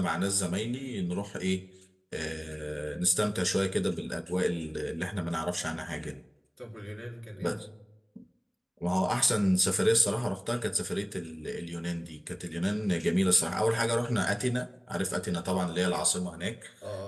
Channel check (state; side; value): identical; both; correlation 1.00